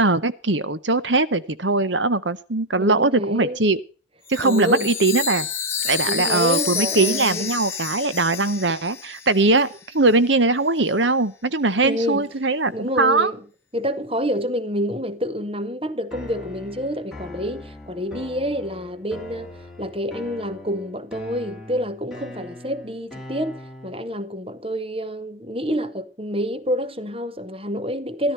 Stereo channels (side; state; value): both; normal; correlation 0.05